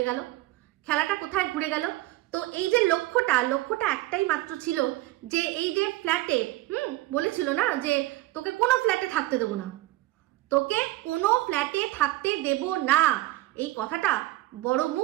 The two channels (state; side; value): quieter; left; 17.7 dB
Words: গেল, খেলাটা কোথায় ঘুরে গেল। তো এই যে লক্ষ্যটা একটাই মাত্র ছিল যে এই যে ফ্ল্যাটে বলেছিল না যে তোকে কোনো ফ্ল্যাটে থাকতে দেবো না, তোকে কোনো ফ্ল্যাটে থাকতে দেব না, এই কথাটা বড়